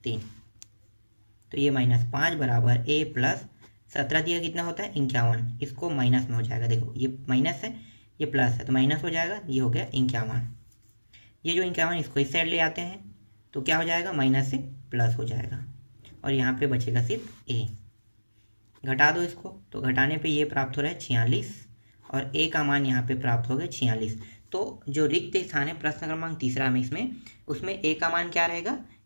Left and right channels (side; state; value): both; inverted; correlation -1.00